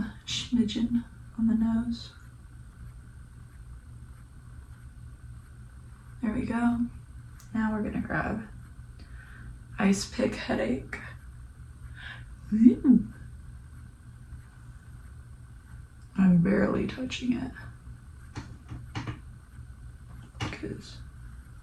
smidgen on the nose. There we go. Now we're gonna grab Ice Pick Headache. Ooh. I'm barely touching it because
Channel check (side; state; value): both; identical; correlation 1.00